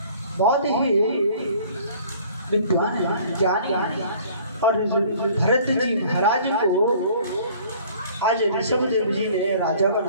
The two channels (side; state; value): both; inverted; correlation -0.53